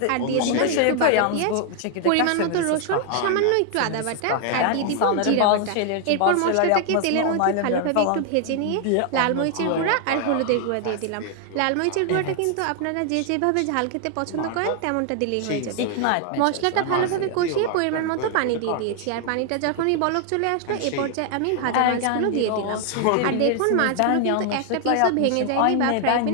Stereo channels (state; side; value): different; both; correlation 0.00